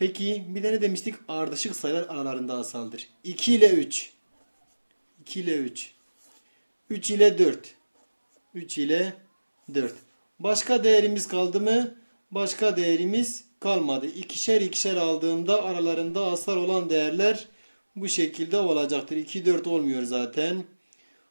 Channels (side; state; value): both; inverted; correlation -1.00